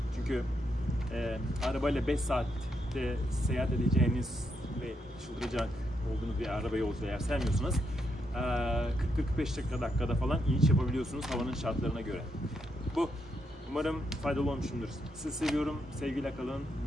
Çünkü arabayla 5 saatte seyahat edeceğiniz ve çıldıracak olduğunuz bir araba yolculuğu eğer sevmiyorsanız 40-45 dakikada falan iniş yapabiliyorsunuz havanın şartlarına göre. Bu. Umarım faydalı olmuşumdur. Sizi seviyorum. Sevgiyle kalın,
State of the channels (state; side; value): normal; both; correlation 0.80